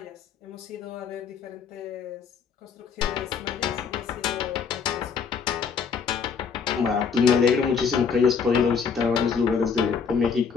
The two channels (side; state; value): right; quieter; 6.1 dB